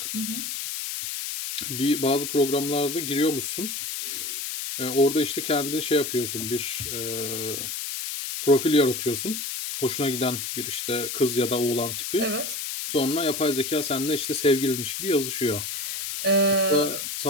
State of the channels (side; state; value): left; noise; hiss, 4 dB below the sound